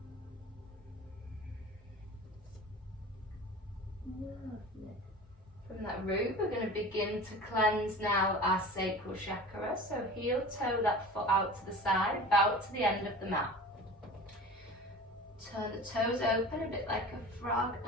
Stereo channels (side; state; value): both; normal; correlation 0.37